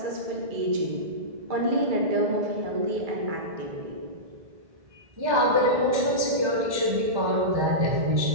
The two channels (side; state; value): left; late; 1.7 ms